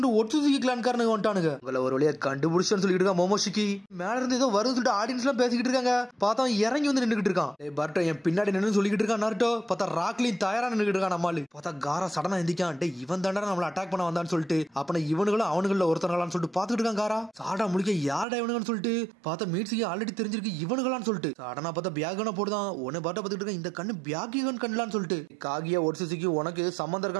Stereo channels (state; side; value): drops out; left; at 18.2 s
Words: ஒட்சுசுகி கிளான்காரனுங்க வந்துட்டானுங்க. உங்களை ஒரு வழியா கண்டுபிடிச்சோன்னு சொல்லிட்டு இருக்கான் மோமோஷிக்கி. மேல இருந்து ஏதோ வரும்னு சொல்லிட்டு ஆடியன்ஸ் எல்லாம் பேசிக்கிட்டு இருக்காங்க. பார்த்தா அவன் இறங்கி வந்து நின்றுட்டு இருக்கான். பர்ட்டோ என் பின்னாடி நின்று சொல்லிக்கிட்டு இருக்கான். நாட்டோ பார்த்தா ராக்லின் தயாரா நின்றுட்டு இருக்கான். நம்மளு பார்த்தா காரா சடனா எந்திக்கான். டே இவன் தாண்டா நம்மள அட்டாக் பண்ண வந்தான்னு சொல்லிட்டு அப்ப இவனுங்களும் அவனுங்கள ஒருத்தர்களான்னு சொல்லிட்டு பாத்துக்கிட்டு இருக்கான். காரா சாடா முடிக்க யாரடா இவனுங்கன்னு சொல்லிட்டு பார்த்தா மீட்ஸுக்கு ஆல்ரெடி தெரிஞ்சிருக்கு இவனுங்களான்னு சொல்லிட்டு சாடனா பார்த்தா பியாகன போடுதான். உன்னை பாட்ட பார்த்துட்டு இருக்க இந்த கண்ணு பியாகிகன் கண்ணலான்னு சொல்லிட்டு காகியா ஒட்சுசுகி உனக்கு சம்பந்தம்